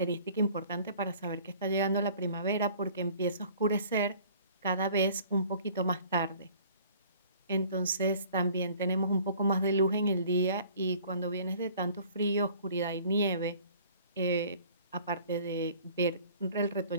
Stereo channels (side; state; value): both; inverted; correlation -0.51